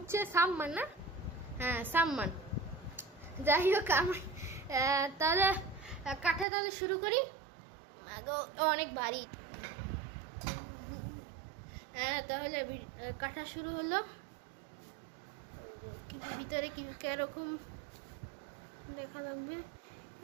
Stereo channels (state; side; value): drops out; left; at 6.5 s